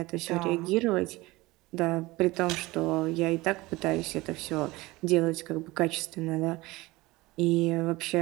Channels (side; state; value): left; quieter; 20.8 dB